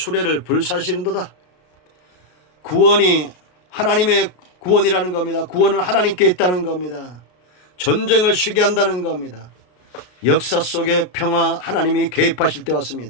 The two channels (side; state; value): right; late; 33 ms